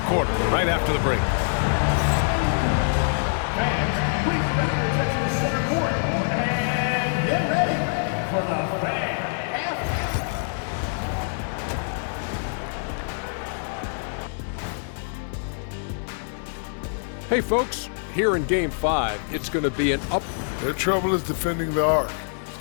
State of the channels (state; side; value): silent; right; digital silence